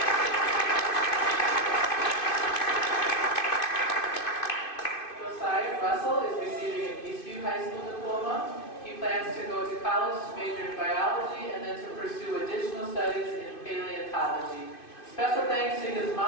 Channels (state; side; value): late; right; 2.5 ms